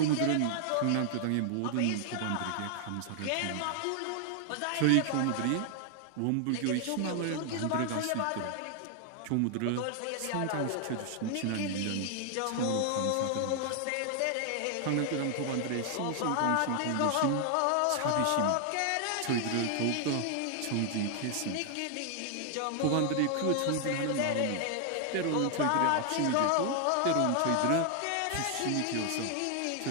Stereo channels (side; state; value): both; different; correlation 0.00